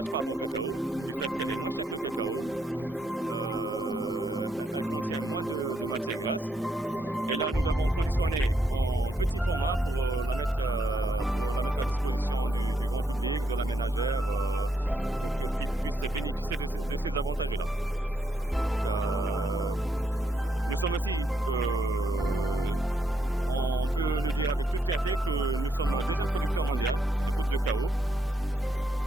par rapport au cacao, du fait qu'elle est moins chère que le cacao. elle contient moins de matière grasse. Et là, nous l'avons conditionnée en petit format pour la mettre à disposition du grand public, de la ménagère, pour qu'ils puissent bénéficier de ces avantages-là. Nous sommes aussi, on peut le dire avec toute fierté, que nous sommes le deuxième producteur mondial de poudre de caoub.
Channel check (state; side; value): normal; both; correlation 0.77